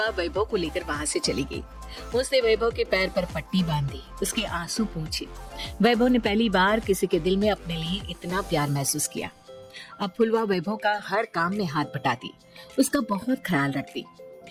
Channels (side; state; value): both; identical; correlation 1.00